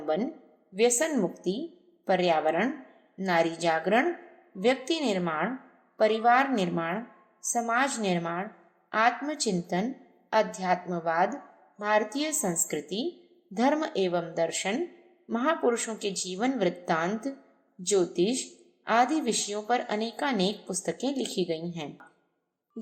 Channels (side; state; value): both; identical; correlation 1.00